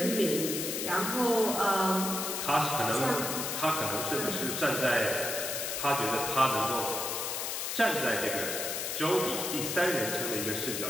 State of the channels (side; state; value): left; noise; hiss, 2 dB below the sound